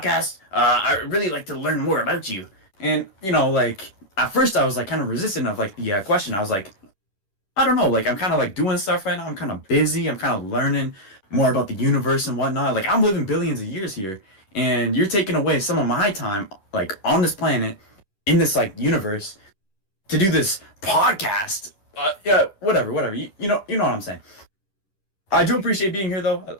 I really like to learn more about you. And like at first I was like kind of resistant of like the question. I was like, I don't know, like I'm kind of like doing stuff right now. I'm kind of busy. I'm kind of learning more about the universe and whatnot. Like I'm living billions of years here, and you're taking away some of my time, like on this planet, in this like universe, to do this podcast. Yeah, whatever. You know what I'm saying. I do appreciate being here, though.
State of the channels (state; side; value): late; right; 11 ms